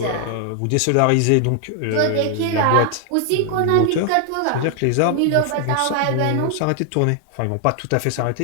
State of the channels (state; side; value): different; both; correlation 0.00